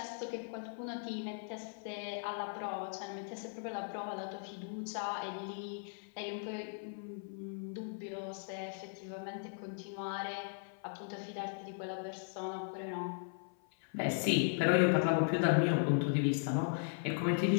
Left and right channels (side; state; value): right; silent; 53 dB below the other